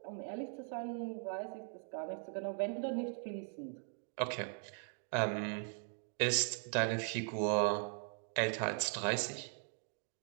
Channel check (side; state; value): left; silent; 51 dB below the other